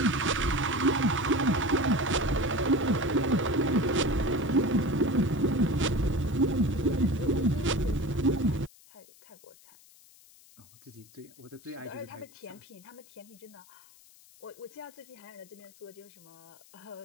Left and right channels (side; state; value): left; noise; hiss, 25 dB below the sound